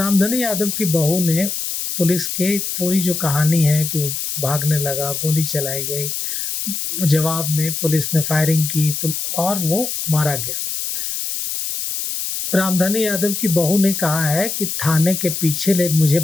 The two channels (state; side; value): noise; left; hiss, 3 dB below the sound